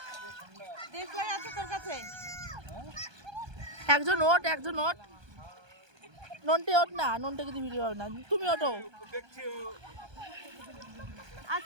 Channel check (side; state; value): left; late; 1.2 ms